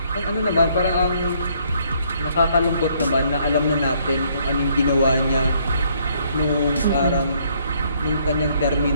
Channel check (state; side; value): inverted; both; correlation -0.67